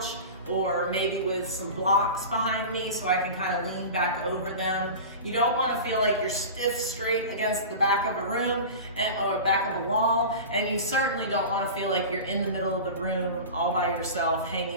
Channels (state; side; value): inverted; both; correlation -0.32